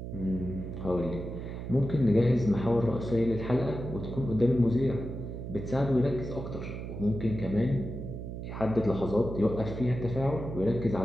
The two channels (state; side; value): noise; right; hum, 7 dB below the sound